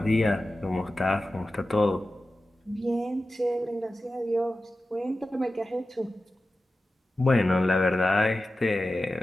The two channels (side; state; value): both; normal; correlation 0.94